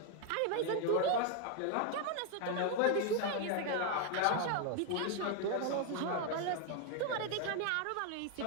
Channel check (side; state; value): both; different; correlation 0.01